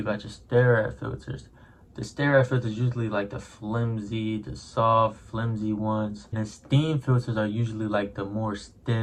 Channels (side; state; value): both; identical; correlation 1.00